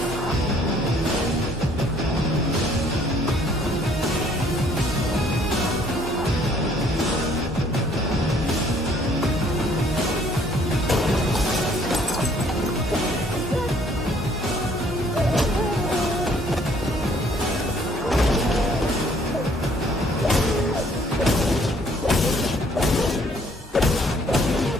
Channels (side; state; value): both; normal; correlation 0.62